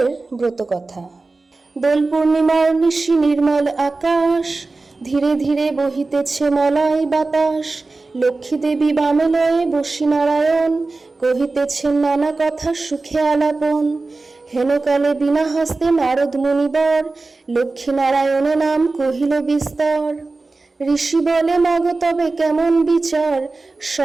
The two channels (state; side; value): quieter; left; 3.6 dB